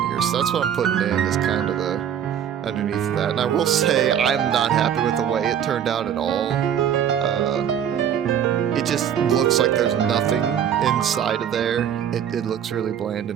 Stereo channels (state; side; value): quieter; left; 9.1 dB